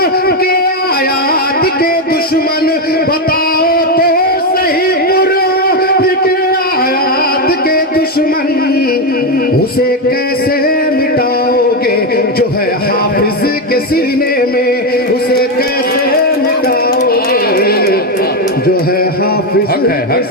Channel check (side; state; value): both; normal; correlation 0.08